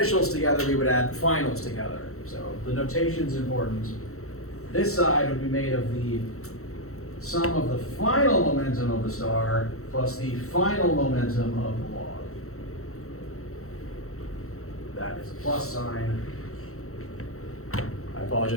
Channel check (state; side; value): late; right; 0.63 ms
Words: together, we would add the finals together. So the notation's important. This side would be made of the sum of the final momentum of the star plus the final momentum of the log. That is a plus sign. I